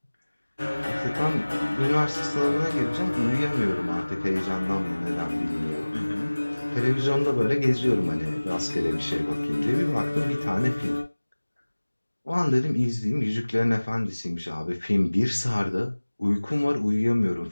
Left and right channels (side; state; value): both; inverted; correlation -1.00